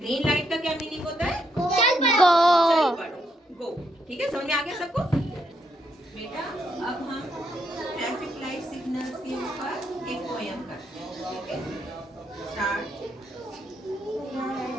लाइट का क्या मीनिंग होता है? चल पड़ो, गो। ठीक है, समझ में आ गया सबको? बेटा, अब हम ट्रैफिक लाइट सिग्नल्स के ऊपर एक पोयम करते हैं। ठीक है, स्टार्ट।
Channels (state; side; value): normal; both; correlation 0.76